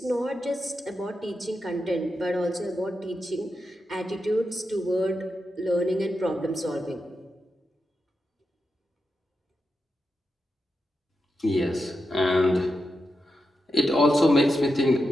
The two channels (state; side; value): normal; both; correlation 0.88